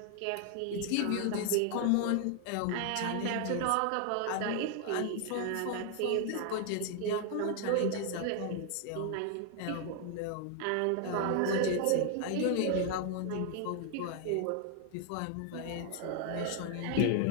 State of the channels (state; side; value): different; both; correlation 0.00